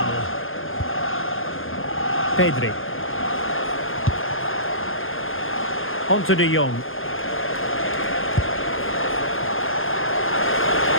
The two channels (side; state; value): right; late; 0.59 ms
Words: Pedri. On to De Jong.